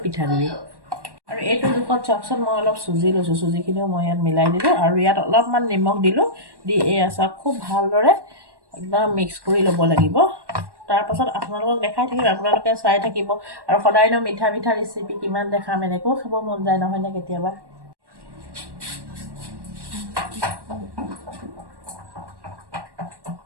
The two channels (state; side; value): late; left; 1.1 ms